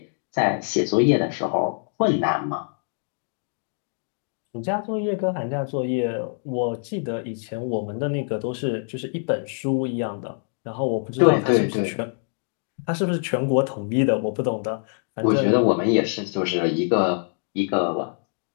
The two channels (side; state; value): right; silent; 60 dB below the other